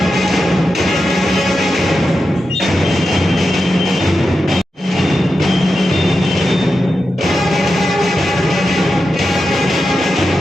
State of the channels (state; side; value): normal; both; correlation 0.89